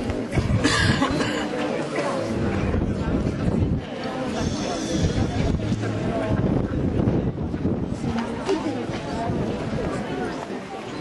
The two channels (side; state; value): both; identical; correlation 1.00